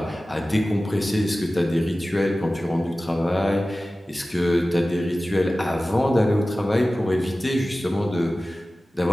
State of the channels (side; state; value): both; normal; correlation 0.96